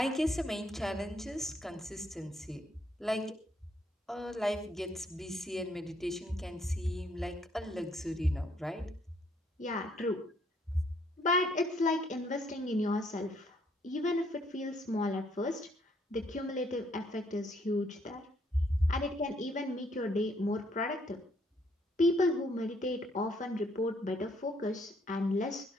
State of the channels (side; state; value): both; normal; correlation 0.69